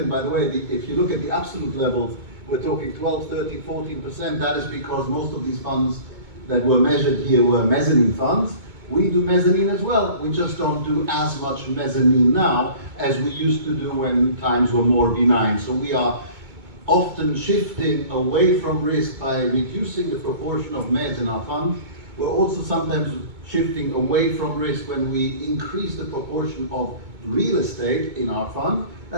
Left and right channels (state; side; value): late; left; 2.2 ms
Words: By the way, if you look at the absolute levels, we're talking 12, 13, 14%. That is because most of these funds that were measured here were mezzanine funds. We do mezzanine as well. We just don't do as much mezzanine now as we used to do when times were more benign. So we are often shifting away from risk by reducing the proportion of mezz in our fund. We're also sometimes shifting away from risk when we increase the proportion of real estate in our fund.